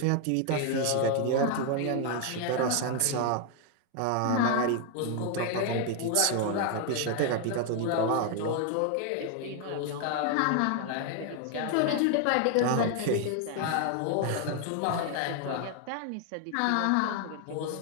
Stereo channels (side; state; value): both; different; correlation 0.00